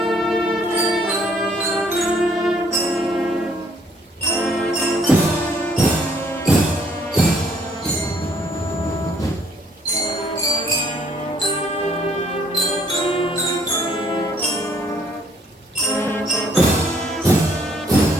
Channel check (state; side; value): normal; both; correlation 0.64